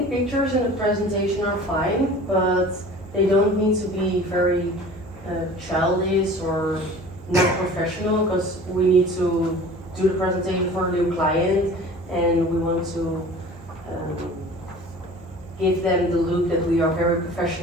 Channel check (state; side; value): normal; both; correlation 0.43